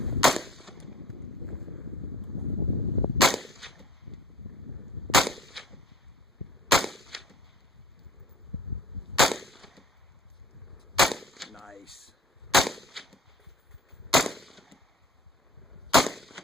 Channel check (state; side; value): normal; both; correlation 0.49